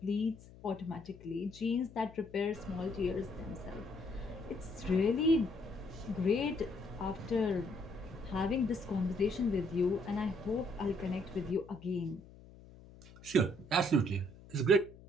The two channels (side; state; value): left; noise; hum, 20 dB below the sound